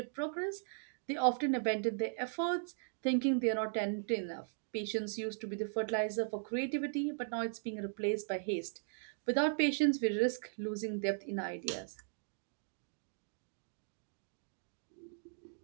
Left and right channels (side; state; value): left; silent; digital silence